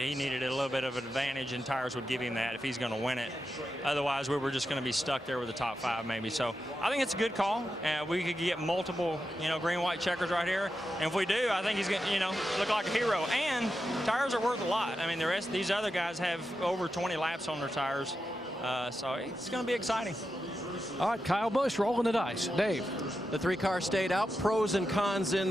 needed a little bit of an advantage, and tires would give him that if he's going to win it. Otherwise, we were just going to be stuck there with the top 5 maybe. So I think it's a good call. We could get multiple, green-white checkers right here. And if we do, I think he's going to, look like a hero. And tires are worth a lot. I mean, the rest of these other guys have over 20 laps on their tires. So it's going to be exciting. All right, Kyle Busch rolling the dice. Dave. The 3 cars stayed out. Pros and cons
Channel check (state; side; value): normal; both; correlation 0.88